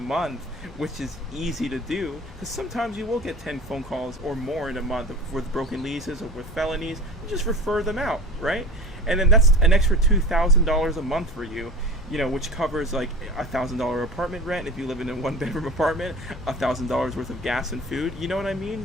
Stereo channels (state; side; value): normal; both; correlation 0.35